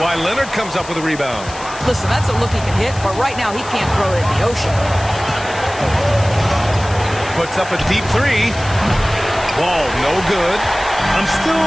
Leonard comes up with a rebound. Listen, that's a look he can hit, but right now he can't throw it in the ocean. Puts up a deep 3. Wall, no good. I'm still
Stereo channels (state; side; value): noise; left; hiss, 15 dB below the sound